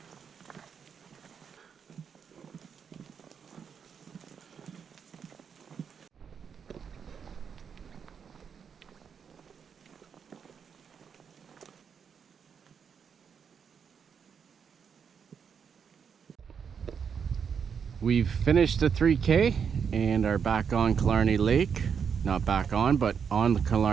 We've finished the 3K and are back on Killarney Lake. Not back on, but on the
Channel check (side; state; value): left; quieter; 6.9 dB